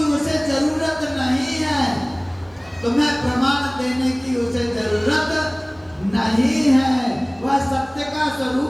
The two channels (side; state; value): right; noise; hum, 29 dB below the sound